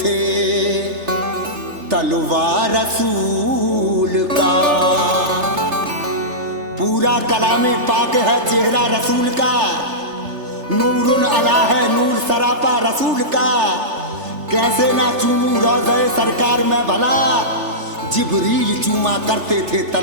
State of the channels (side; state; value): left; late; 3.4 ms